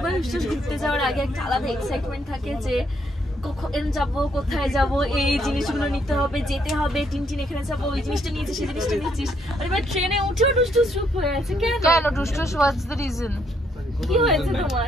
টুসটুস ঘুরতে যাওয়ার আগে একটা আলাদা এক্সাইটমেন্ট থাকে যে কখন যাবো, কোথায় যাবো, এই জিনিসগুলো নিতে হবে, যেতে হবে, টিনটিন এখানে যাবো, ওই জিনিসটা নিয়েছিস, সেই জিনিসটা নিয়েছিস। আর এবার ট্রেনে উঠেও টুসটুস চুপ হয়ে আছে। কেন টুসটুস, হোয়াটস দ্য রিজন? কি হয়েছে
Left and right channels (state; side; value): normal; both; correlation 0.72